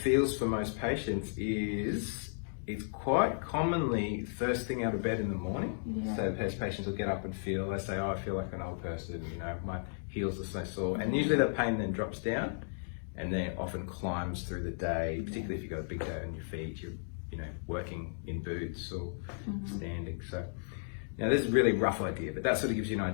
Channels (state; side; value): silent; right; digital silence